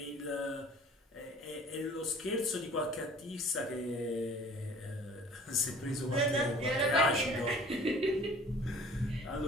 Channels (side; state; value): both; normal; correlation 0.49